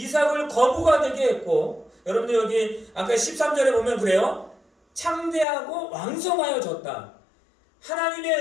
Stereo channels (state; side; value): drops out; right; at 5.5 s